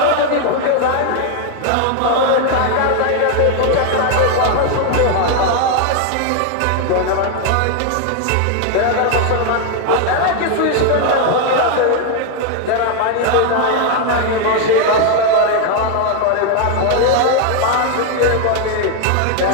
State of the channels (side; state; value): both; different; correlation 0.00